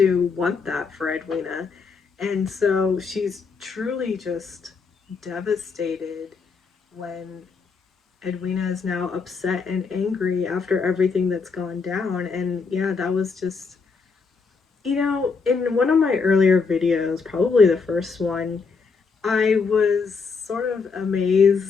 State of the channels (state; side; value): quieter; right; 5.0 dB